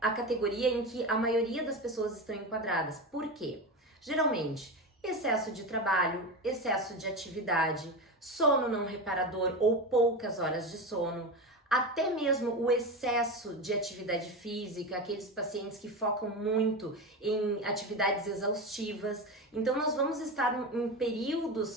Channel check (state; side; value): normal; both; correlation 0.21